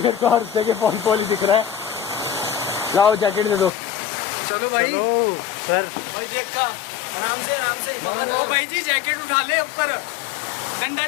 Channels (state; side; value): drops out; right; at 3.7 s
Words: मेरे को हर जगह फॉल ही दिख रहा है। लाओ जैकेट दे दो। चलो भाई। सर भाई देखा, आराम से आराम से। ओ भाई जी जैकेट उठा ले ऊपर, डंडा